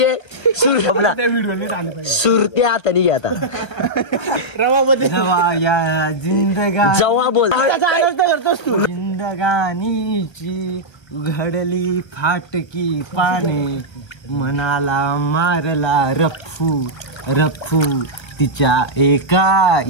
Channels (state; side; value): late; right; 1.3 ms